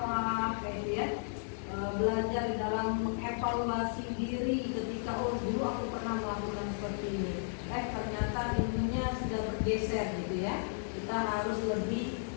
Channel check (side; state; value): right; silent; digital silence